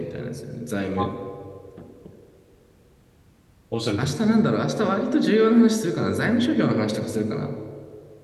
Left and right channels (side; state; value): both; identical; correlation 1.00